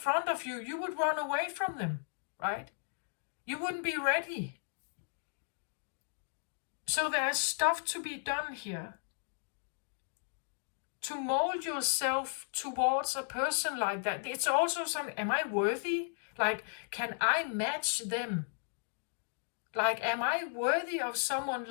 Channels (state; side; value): silent; right; digital silence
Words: of you, you would run away from them, right? You wouldn't be ready. So there's stuff to be done here. To mold yourself towards a person like that. It's also something, am I worthy? Like, can I match them? Like, am I worthy of someone